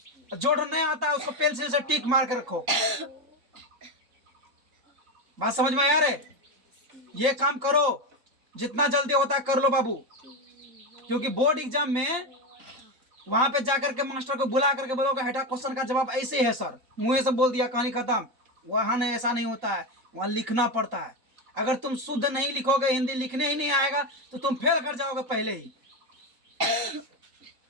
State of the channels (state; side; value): late; left; 4.1 ms